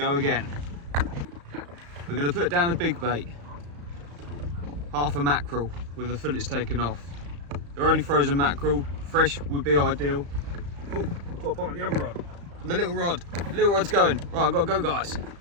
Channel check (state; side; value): late; left; 35 ms